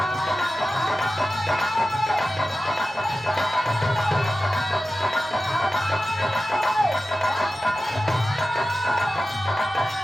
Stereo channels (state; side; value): normal; both; correlation 0.94